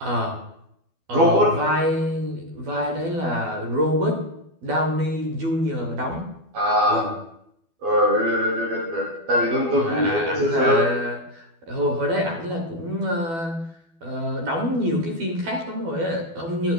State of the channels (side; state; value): left; late; 12 ms